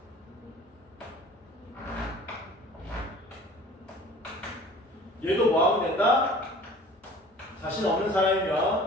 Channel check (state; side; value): normal; both; correlation 0.47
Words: 얘도 뭐하면 된다? 자신 없는